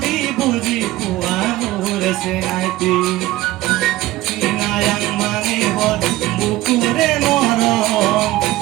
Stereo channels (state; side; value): quieter; left; 17.1 dB